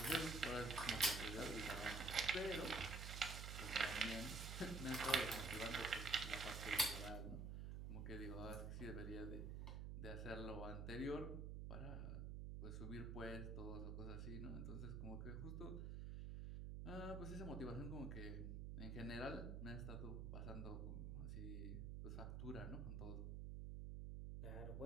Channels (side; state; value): right; noise; hum, 4 dB below the sound